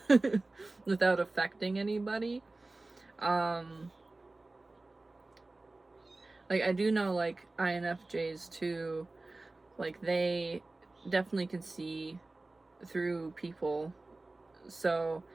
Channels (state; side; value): quieter; left; 3.1 dB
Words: without affecting anybody. Like I do know like INFJs too, like they definitely can see through people, so